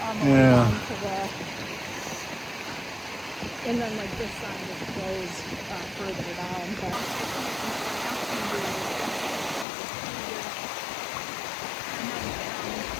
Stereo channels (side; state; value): right; drops out; at 9.7 s